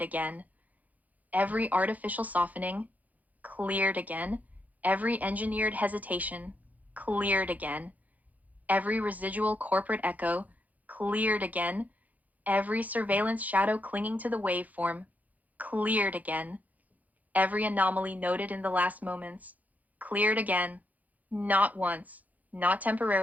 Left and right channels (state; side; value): late; left; 0.079 ms